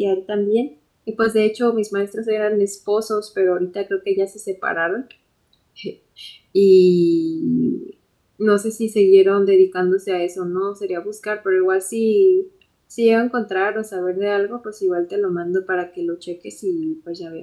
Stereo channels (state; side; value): identical; both; correlation 1.00